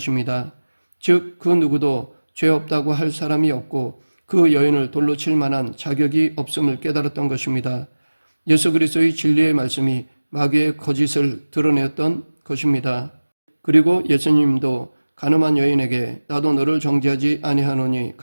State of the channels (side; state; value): both; inverted; correlation -1.00